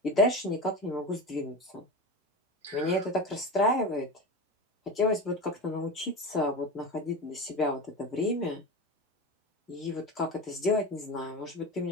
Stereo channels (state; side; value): normal; both; correlation 0.25